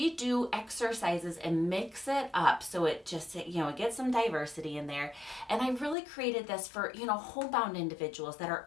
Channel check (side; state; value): right; drops out; at 6.0 s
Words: do exercises and mix it up so it just, it gets some diversity in there. And I really created this for, homebound individuals that